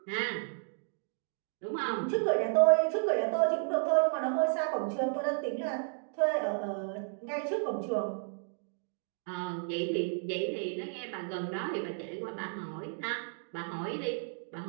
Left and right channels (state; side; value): silent; left; 56 dB below the other